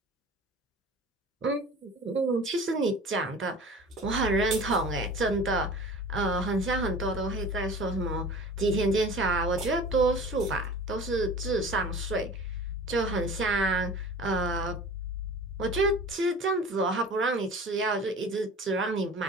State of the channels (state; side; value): normal; both; correlation 0.40